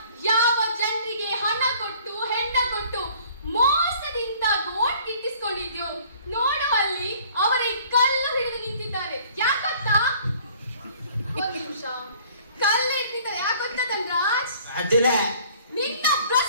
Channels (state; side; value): inverted; both; correlation -0.54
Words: ಯಾವ ಜನರಿಗೆ ಹಣ ಕೊಟ್ಟು ಹೆಣ್ಣ ಕೊಟ್ಟು ಮೋಸದಿಂದ ಓಟ್ ಗಿಟ್ಟಿಸ್ಕೊಂಡಿದ್ಯೋ ನೋಡು, ಅಲ್ಲಿ ಅವರೇ ಕಲ್ಲು ಹಿಡಿದು ನಿಂತಿದ್ದಾರೆ. ಯಾಕಂತ ಒಂದು ನಿಮಿಷ, ಕಲ್ಲು ಹಿಡಿದಿದ್ದಾರೆ ಯಾಕಂತ ಧನ್ರಾಜ್? ನಿನ್ನ